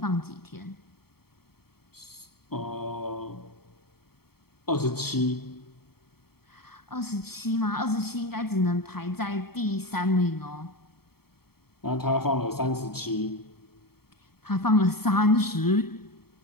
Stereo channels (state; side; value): late; right; 0.95 ms